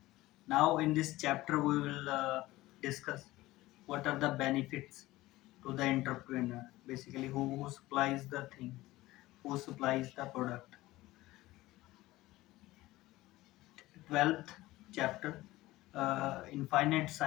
Now in this chapter we will discuss what are the benefits to the entrepreneur, basically who supplies the thing, who supplies the product. 12th chapter, infinite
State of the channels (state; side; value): quieter; right; 17.9 dB